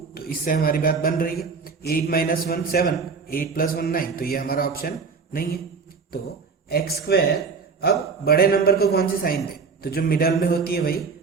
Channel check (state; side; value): quieter; left; 5.2 dB